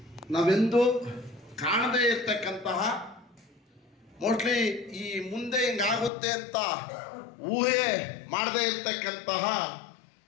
ನಾವೆಂದೂ ಕಾಣದೇ ಇರ್ತಕ್ಕಂತಹ, ಮೋಸ್ಟ್ಲಿ ಈ ಮುಂದೆ ಹಿಂಗಾಗುತ್ತೆ ಅಂತ ಊಹೆ ಮಾಡದೇ ಇರ್ತಕ್ಕಂತಹ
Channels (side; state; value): right; drops out; at 6.1 s